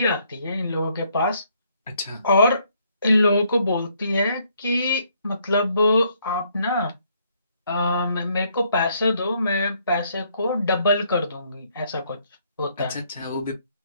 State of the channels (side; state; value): both; inverted; correlation -0.69